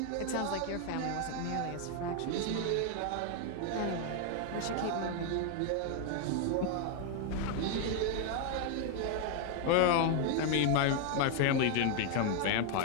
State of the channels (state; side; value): different; both; correlation 0.00